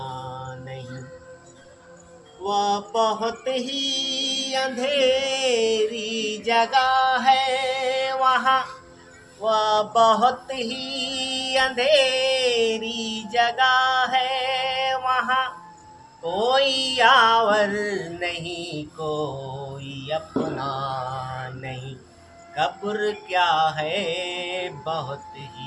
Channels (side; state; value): both; identical; correlation 1.00